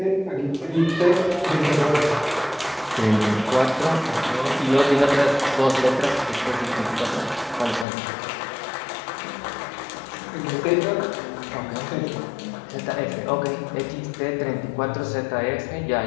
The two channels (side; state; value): right; drops out; at 7.9 s